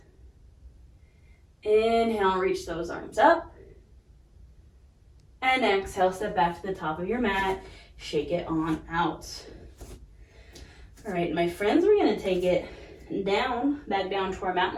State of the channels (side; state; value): both; identical; correlation 1.00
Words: Inhale, reach those arms up. And exhale, step back to the top of your mat. Shake it on out. All right, my friends, we're gonna take it down, back down to our mat.